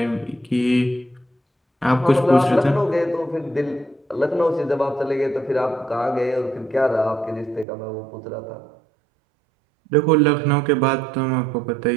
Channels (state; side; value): drops out; left; at 7.7 s